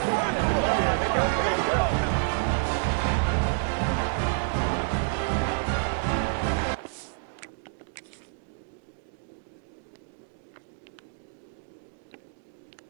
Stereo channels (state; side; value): silent; left; digital silence